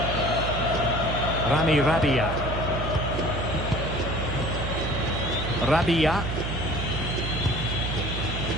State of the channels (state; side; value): noise; right; hum, 4 dB below the sound